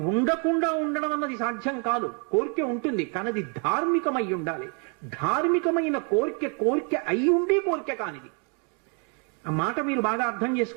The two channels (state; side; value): quieter; left; 37.9 dB